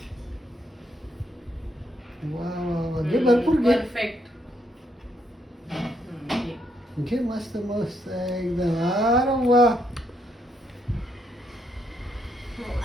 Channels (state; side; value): normal; both; correlation 0.75